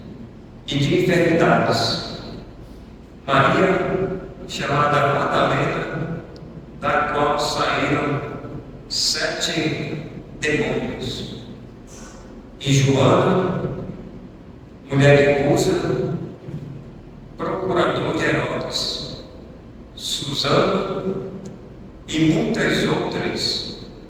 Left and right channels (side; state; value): both; identical; correlation 1.00